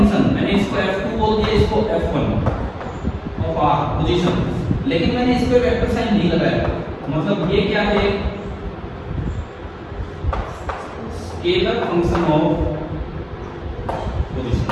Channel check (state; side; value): identical; both; correlation 1.00